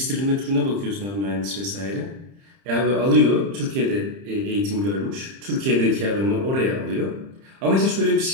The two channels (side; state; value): left; late; 30 ms